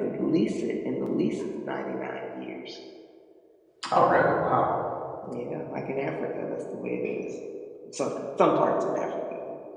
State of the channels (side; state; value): both; identical; correlation 1.00